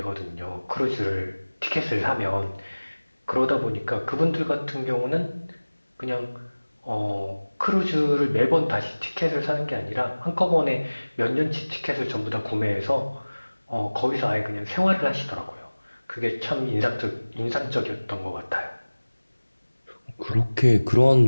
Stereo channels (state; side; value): inverted; both; correlation -1.00